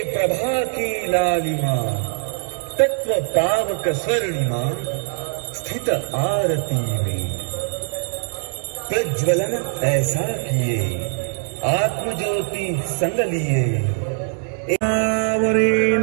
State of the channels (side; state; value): left; silent; digital silence